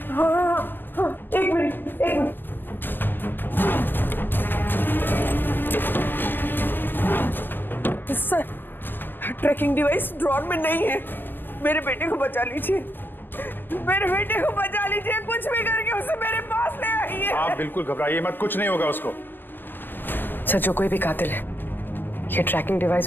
हाँ हाँ हाँ, एक मिनट एक minute. Sir, tracking device drawer में नहीं है। मेरे बेटे को बचा लीजिए, मेरे बेटे को बचा लीजिए, कुछ भी करके उसे मेरे पास ले आइए। आप बिल्कुल घबराइए मत, कुछ नहीं होगा उसको। सर, जो कोई भी कातिल है, ये ट्रैकिंग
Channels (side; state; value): right; late; 0.096 ms